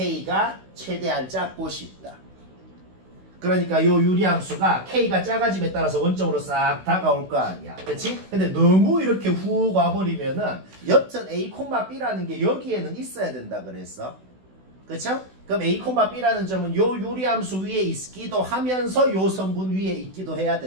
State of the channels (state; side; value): late; left; 16 ms